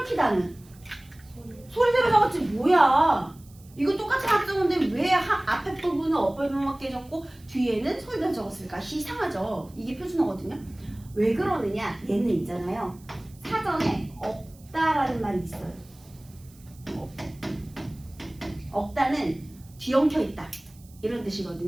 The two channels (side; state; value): right; noise; hiss, 26 dB below the sound